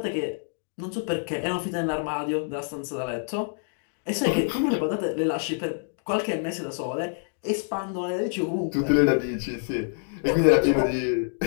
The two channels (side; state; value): right; silent; digital silence